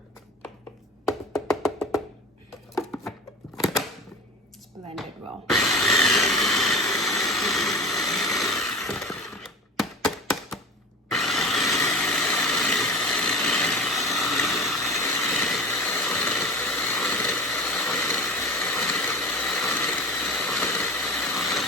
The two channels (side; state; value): both; normal; correlation 0.34